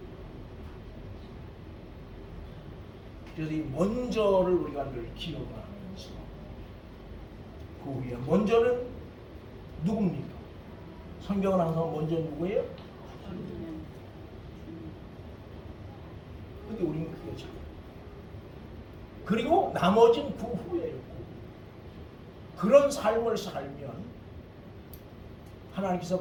그래서 이 먼저를 우리가 늘 기억을 하면서 그 후에 먼저는 누굽니까? 성경은 항상 먼저 누구예요? 근데 우리는 그게 잘 그리고 나머지는 그 후에요. 그런 삶을 살면 하나님께서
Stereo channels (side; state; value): both; identical; correlation 1.00